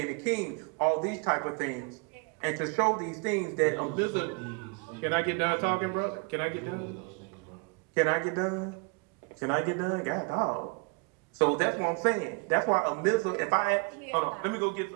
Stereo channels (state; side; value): quieter; left; 32.4 dB